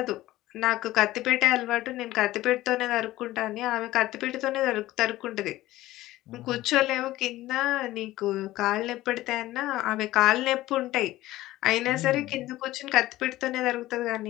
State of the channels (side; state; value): right; quieter; 16.4 dB